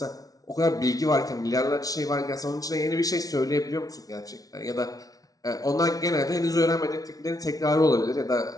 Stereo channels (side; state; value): right; late; 0.18 ms